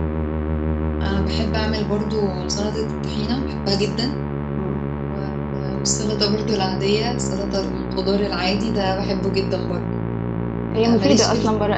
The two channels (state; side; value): identical; both; correlation 1.00